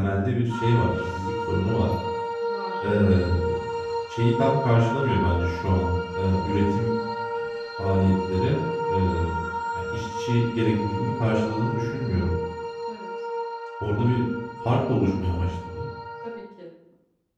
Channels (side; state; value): both; identical; correlation 1.00